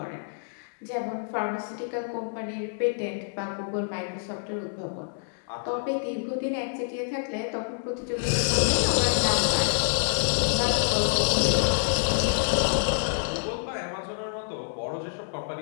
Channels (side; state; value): right; silent; digital silence